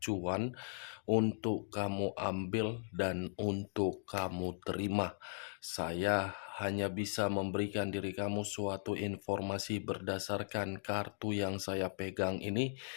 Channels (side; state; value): right; silent; digital silence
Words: untuk kamu ambil dan untuk kamu terima. Saya hanya bisa memberikan diri kamu suatu informasi berdasarkan kartu yang saya pegang ini.